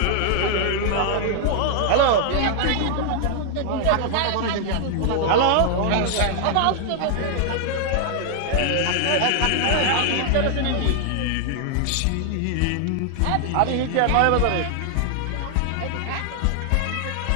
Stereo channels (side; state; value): both; different; correlation 0.00